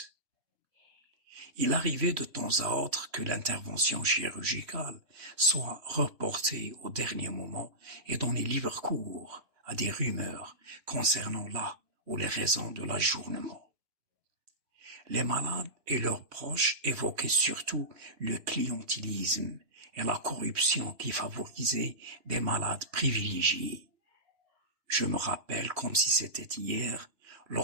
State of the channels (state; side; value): late; left; 2.9 ms